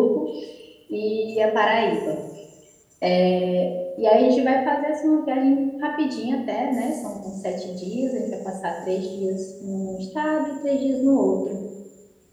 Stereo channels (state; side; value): identical; both; correlation 1.00